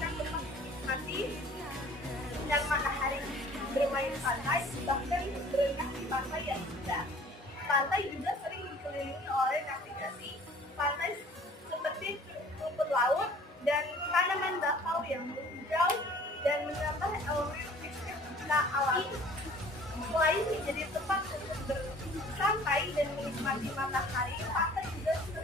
tempat menikmati dan matahari, bermain pantai, bahkan berenang di pantai yang indah. Pantai juga sering dikelilingi oleh navigasi pantai seperti rumput laut dan tanaman bakau yang menghijau dan menambah elemen estetika alami. Selain menjadi tempat untuk bersantai dan menikmati matahari, pantai juga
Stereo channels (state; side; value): normal; both; correlation 0.51